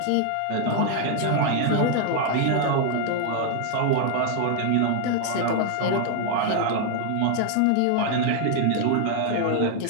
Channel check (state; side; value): different; both; correlation 0.00